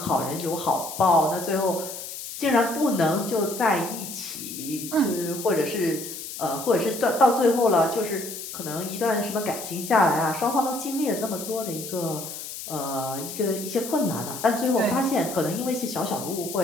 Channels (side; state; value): left; noise; hiss, 9 dB below the sound